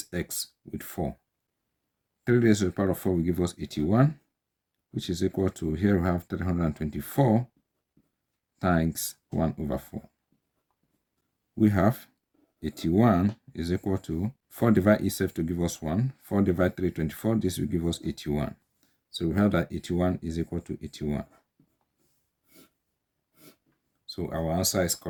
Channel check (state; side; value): identical; both; correlation 1.00